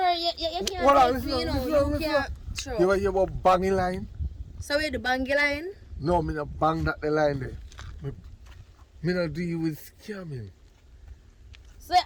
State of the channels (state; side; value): identical; both; correlation 1.00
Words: Hold on, take me, you know, listen. you can't throw. You hear about banging line? So where the bangy line? No, me not bang that the line there. Me not deal with scamming. So